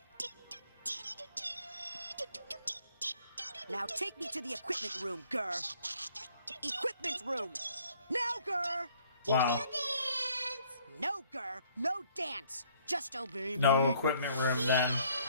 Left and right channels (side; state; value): both; inverted; correlation -0.62